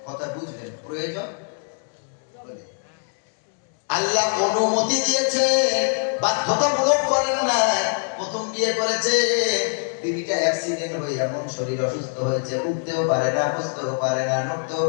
কথা বুঝলেন? প্রয়োজন আল্লাহ অনুমতি দিয়েছে, বাধ্যতামূলক করেন না। প্রথম বিয়ে করেছে, বিবিটা অ্যাক্সিডেন্ট হয়ে এমন শরীর অসুস্থ হয়েছে, উঠতেও পারে না, বসতেও পারে না, নড়তেও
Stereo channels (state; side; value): silent; right; 63 dB below the other